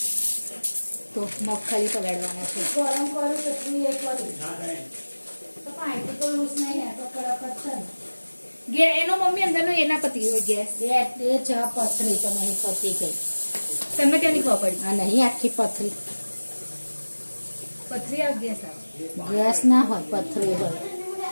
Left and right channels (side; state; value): both; inverted; correlation -1.00